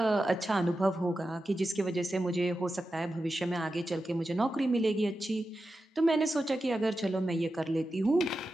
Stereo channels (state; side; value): normal; both; correlation 0.91